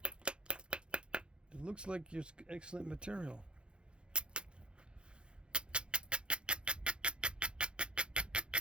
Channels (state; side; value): late; left; 0.054 ms